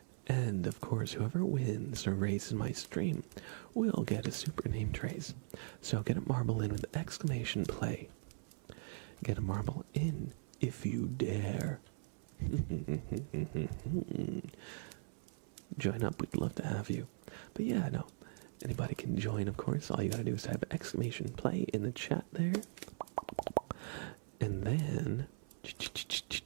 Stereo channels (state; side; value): silent; left; 51 dB below the other